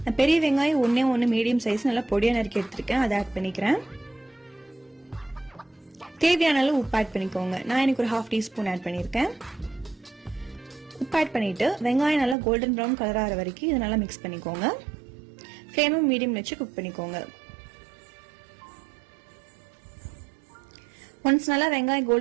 நான் பெரிய வெங்காயம் ஒண்ணு மீடியம் சைஸ் நல்லா பொடியா நறுக்கி எடுத்திருக்கேன். அதை ஆட் பண்ணிக்கிறேன். தேவையான அளவு உப்பு ஆட் பண்ணிக்கோங்க. நான் எனக்கு ஒரு 1/2 டீஸ்பூன் ஆட் பண்ணியிருக்கேன். உப்பு ஆட் பண்ணிட்டு வெங்காயம் நல்லா கோல்டன் ப்ரௌன் கலர் ஆகிற வரைக்கும் இதை நல்லா மிக்ஸ் பண்ணிக்கோங்க. ஃப்ளேமும் மீடியம் வச்சு குக் பண்ணிக்கோங்க. ஒன்ஸ் நல்லா வெங்காயம்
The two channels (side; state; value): left; drops out; at 12.4 s